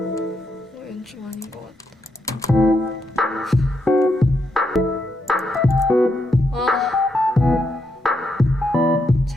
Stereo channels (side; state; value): both; normal; correlation 0.80